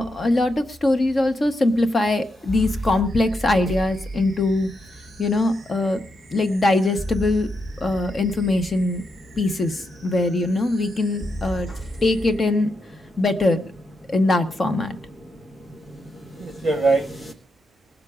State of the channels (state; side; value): normal; both; correlation 0.83